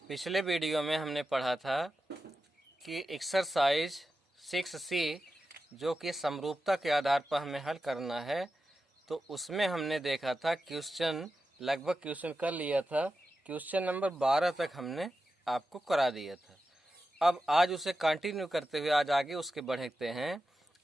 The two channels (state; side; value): normal; both; correlation 0.91